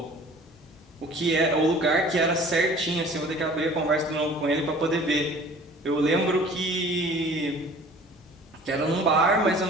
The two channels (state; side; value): normal; both; correlation 0.48